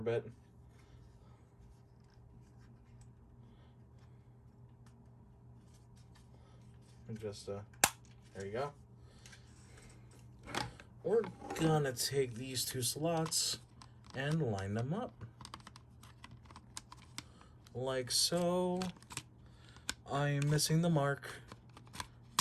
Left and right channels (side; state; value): both; identical; correlation 1.00